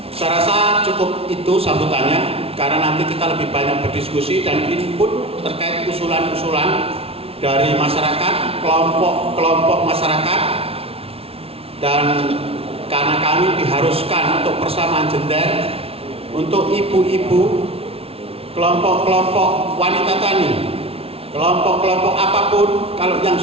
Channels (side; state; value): left; late; 0.28 ms